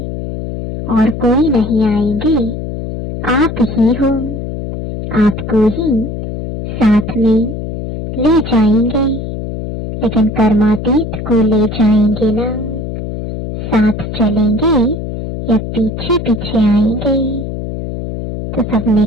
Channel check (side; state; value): left; noise; hum, 6 dB below the sound